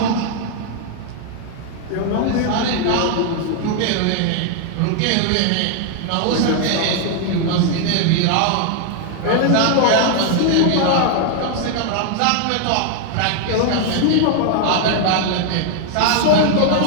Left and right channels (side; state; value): both; different; correlation 0.00